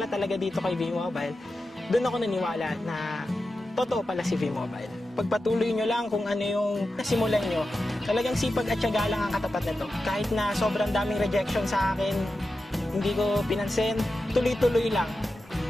talaga dito kay V-Mobile, doon ako naniwala na totoo pala si V-Mobile. Pagpatuloy nyo lang kung ano yung nasimulan nyo. Talagang sipag at tiyaga lang ang katapat nito. Kahit na sobrang daming rejection sa akin, hindi ko pinansin, tuloy-tuloy lang.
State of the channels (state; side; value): normal; both; correlation 0.91